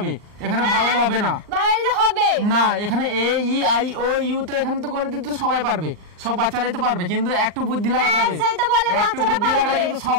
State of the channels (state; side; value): late; left; 38 ms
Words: এখানে ভাওয়েল হবে না। ভাওয়েল হবে না, এখানে এ ই আই ও ইউ তো এখানে তো করে দিতে সবাই পারবে, সব বাচ্চারাই তো পারবে, কিন্তু একটু বুদ্ধি লাগাতে হবে। একটু বুদ্ধি লাগালে কিন্তু সব